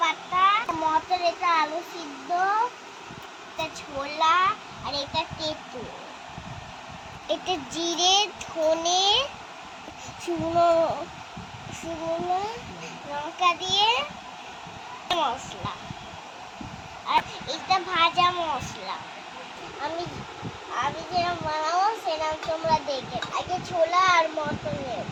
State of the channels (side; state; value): both; identical; correlation 1.00